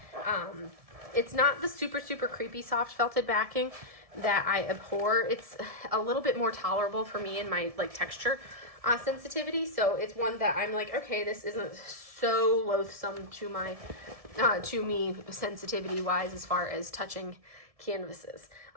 It's not the super, super creepy soft felted backing that I abhor. It's a little bit more tolerable for me and my texture sensitivity. So it's one that I'm like, okay, this isn't so loathsome to my, to me sensitivity wise as far as touching canvases.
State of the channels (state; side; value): late; left; 1.7 ms